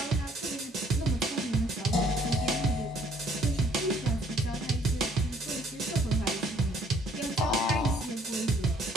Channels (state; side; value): normal; both; correlation 0.61